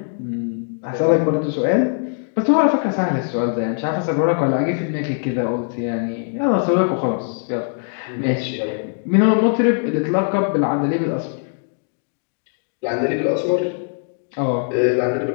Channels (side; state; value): right; silent; 65 dB below the other